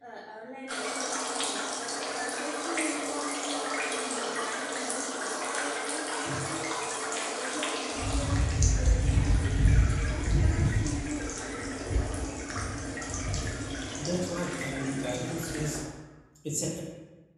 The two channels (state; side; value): identical; both; correlation 1.00